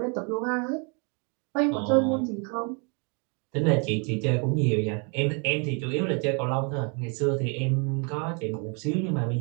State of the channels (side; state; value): left; quieter; 35.6 dB